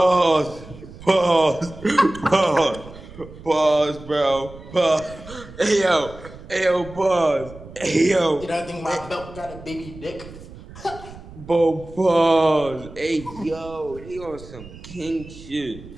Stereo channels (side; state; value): right; noise; rumble, 17 dB below the sound